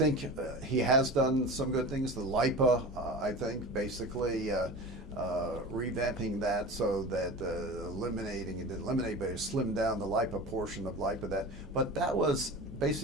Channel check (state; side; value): normal; both; correlation 0.32